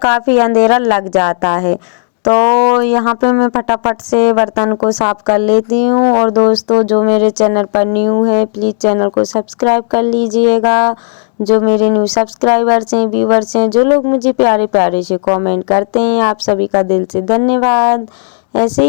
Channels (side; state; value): right; silent; digital silence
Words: अंधेरा लग जाता है। तो यहाँ पे मैं फटाफट से बर्तन को साफ़ कर लेती हूँ। और दोस्तों जो मेरे चैनल पर न्यू है प्लीज़ चैनल को सब्सक्राइब कर लीजिएगा। जो मेरे न्यू सब्सक्राइबर्स हैं, व्यूवर्स हैं, जो लोग मुझे प्यारे प्यारे से कमेंट करते हैं, आप सभी का दिल से धन्यवाद। ऐसे